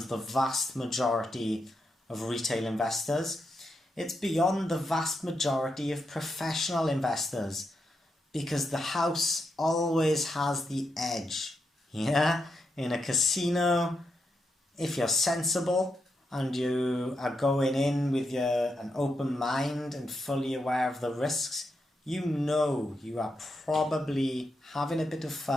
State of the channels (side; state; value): both; normal; correlation 0.83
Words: the vast majority of retail investors. It's beyond the vast majority of professional investors, because the house always has the edge. Yeah? In a casino, if you're sensible and you are going in with an open mind and fully aware of the risks, you know you are probably having a bit of